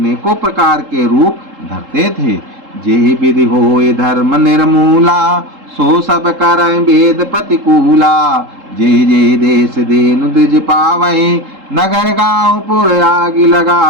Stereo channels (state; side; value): late; left; 3.7 ms